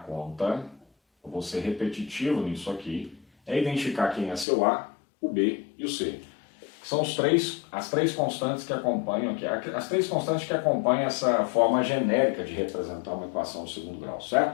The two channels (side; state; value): right; drops out; at 4.5 s